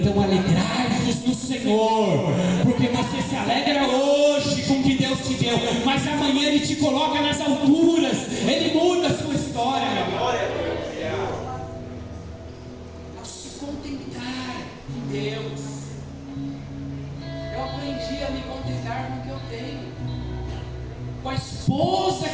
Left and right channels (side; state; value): both; identical; correlation 1.00